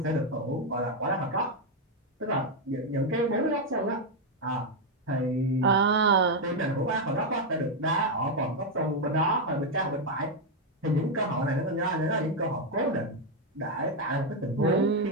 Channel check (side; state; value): both; normal; correlation 0.03